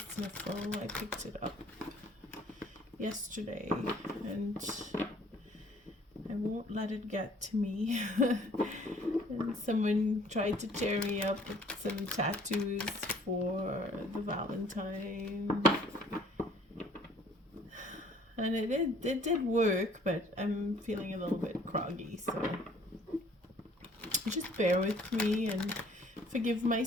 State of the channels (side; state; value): both; normal; correlation 0.56